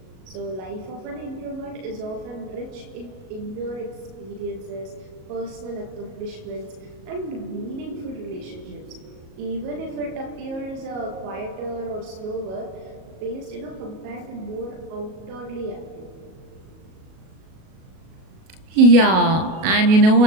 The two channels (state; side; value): late; left; 37 ms